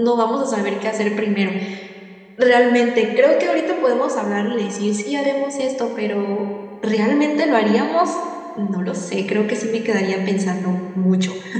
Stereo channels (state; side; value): identical; both; correlation 1.00